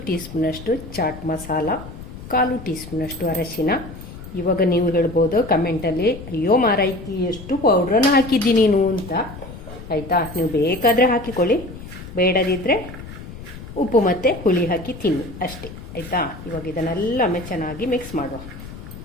ಟೀ ಸ್ಪೂನಷ್ಟು ಚಾಟ್ ಮಸಾಲ, 1/4 ಟೀ ಸ್ಪೂನಷ್ಟು ಅರಶಿನ. ಇವಾಗ ನೀವು ಹೇಳ್ಬೋದು ಕಮೆಂಟಲ್ಲಿ, ಅಯ್ಯೋ ಮಾರಾಯ್ತಿ ಎಷ್ಟು ಪೌಡ್ರನ್ನು ಹಾಕಿದ್ದಿ ನೀನು ಅಂತ. ಆಯಿತಾ, ನೀವು ಬೇಕಾದರೆ ಹಾಕಿಕೊಳ್ಳಿ, ಬೇಡದಿದ್ದರೆ ಉಪ್ಪು ಮತ್ತು ಹುಳಿ ಹಾಕಿ ತಿನ್ನಿ ಅಷ್ಟೇ. ಆಯಿತಾ, ಇವಾಗ ಇದನ್ನೆಲ್ಲ ಚೆನ್ನಾಗಿ ಮಿಕ್ಸ್ ಮಾಡುವ.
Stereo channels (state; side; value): noise; left; rumble, 13 dB below the sound